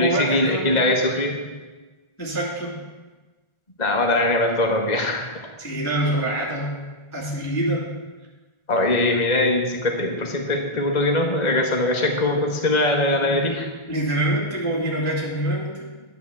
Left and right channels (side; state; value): right; late; 1.4 ms